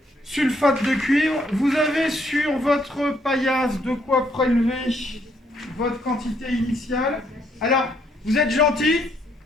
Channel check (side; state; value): both; normal; correlation 0.71